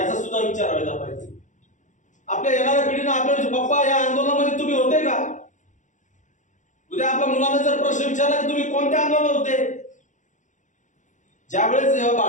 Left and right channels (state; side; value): late; right; 0.36 ms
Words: सुद्धा विचार व्हायला पाहिजे। आपल्या येणाऱ्या पिढीनं आपल्या पप्पा या आंदोलनामध्ये तुम्ही होते का? उद्या आपल्या मुलांना जर प्रश्न विचारला की तुम्ही कोणत्या आंदोलनात होते? ज्यावेळेस